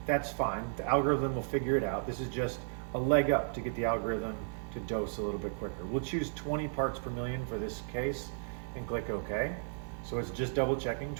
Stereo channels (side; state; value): left; silent; digital silence